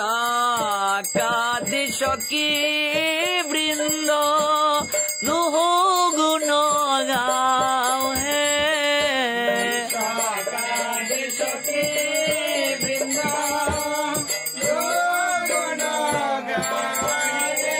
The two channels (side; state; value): both; identical; correlation 1.00